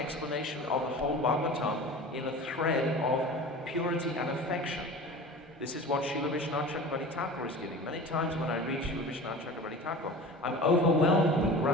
of the whole Bhagavatam in a thread of purity and affection. This is what Srila Vishwanath Chakravarti Thakur is giving. Many times when I read Srila Vishwanath Chakravarti Thakur, I'm overwhelmed with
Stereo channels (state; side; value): normal; both; correlation 0.36